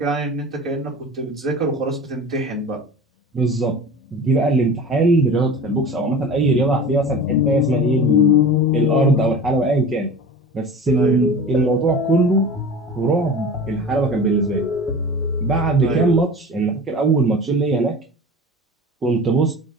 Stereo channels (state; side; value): normal; both; correlation 0.36